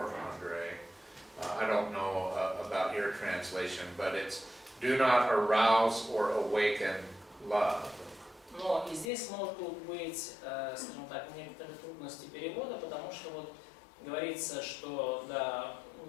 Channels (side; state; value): right; drops out; at 9.1 s